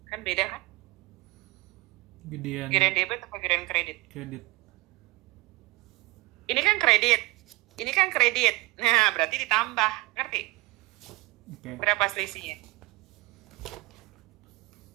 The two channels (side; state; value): left; quieter; 21.9 dB